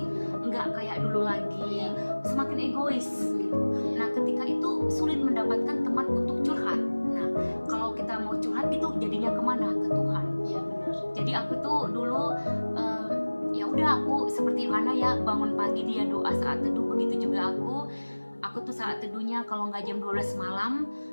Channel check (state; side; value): inverted; both; correlation -1.00